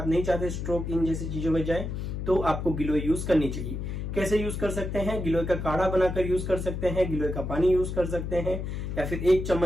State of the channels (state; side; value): noise; left; hum, 4 dB below the sound